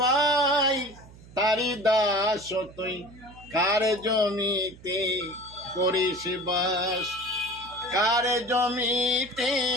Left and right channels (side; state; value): right; noise; hum, 21 dB below the sound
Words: তারি দাস। তুই কার জমিতে করিস বাস, কার জমিতে